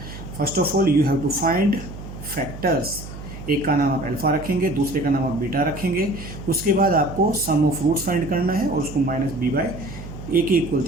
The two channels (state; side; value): noise; right; hum, 12 dB below the sound